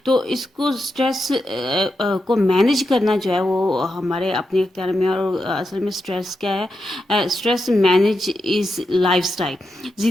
तो इसको स्ट्रेस को मैनेज करना जो है वो हमारे अपने इख्तियार में। और असल में स्ट्रेस क्या है? Stress manage is lifestyle.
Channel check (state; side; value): normal; both; correlation 0.87